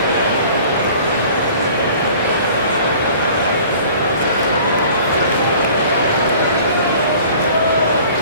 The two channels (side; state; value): both; inverted; correlation -0.48